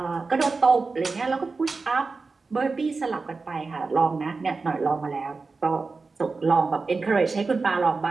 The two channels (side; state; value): left; quieter; 4.1 dB